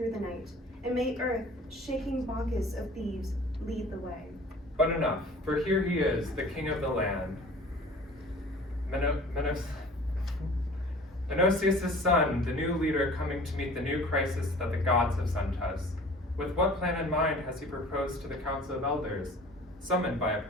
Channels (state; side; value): normal; both; correlation 0.46